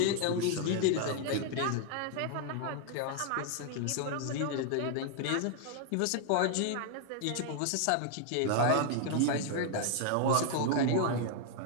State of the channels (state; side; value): different; both; correlation 0.00